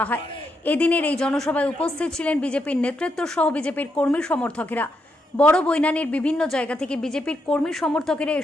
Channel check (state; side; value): normal; both; correlation 0.81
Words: হয়। এদিনের এই জনসভায় উপস্থিত ছিলেন বিজেপির নেতৃত্ব সহ বিজেপির কর্মী সমর্থকেরা। বড় বৈনানের বিভিন্ন জায়গা থেকে বিজেপির কর্মী সমর্থকেরা